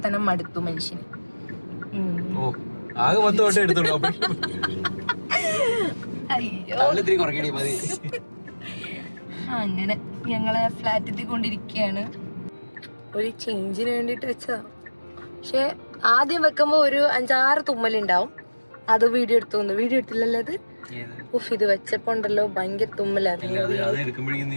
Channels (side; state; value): both; inverted; correlation -1.00